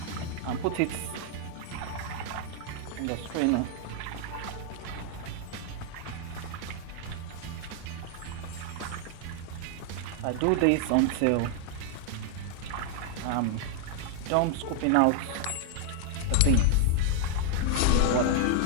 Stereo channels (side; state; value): both; different; correlation 0.00